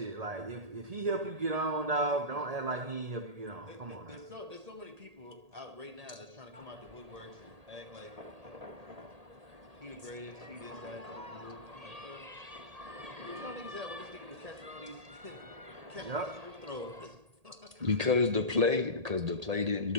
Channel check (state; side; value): late; left; 1.8 ms